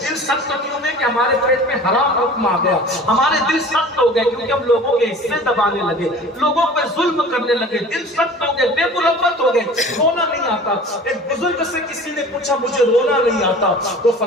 دل سخت کیوں میں کہ ہمارے پیٹ میں حرام حکم آ گیا، ہمارے دل سخت ہو گئے کیونکہ ہم لوگوں کے حصے دبانے لگے، لوگوں پہ ظلم کرنے لگے، دل سخت ہو گئے، بے مربت ہو گئے، رونا نہیں آتا۔ ایک بزرگ سے کسی نے پوچھا مجھے رونا نہیں آتا، تو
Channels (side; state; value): both; normal; correlation 0.42